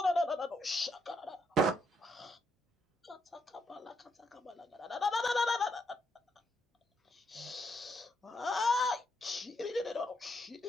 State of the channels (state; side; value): normal; both; correlation 0.77